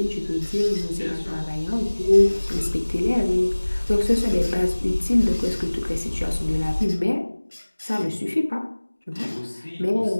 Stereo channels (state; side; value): inverted; both; correlation -1.00